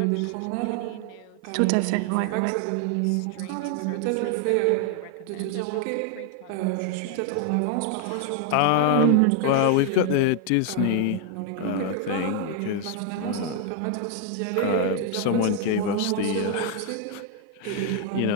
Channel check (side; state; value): both; different; correlation 0.00